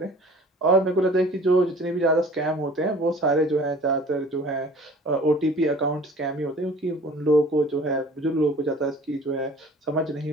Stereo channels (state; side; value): normal; both; correlation 0.48